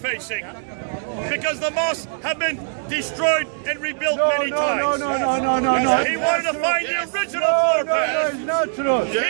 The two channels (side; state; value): left; silent; digital silence